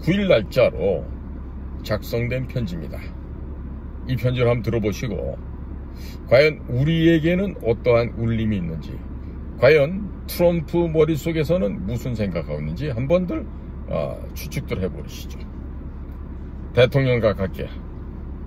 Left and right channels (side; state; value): both; identical; correlation 1.00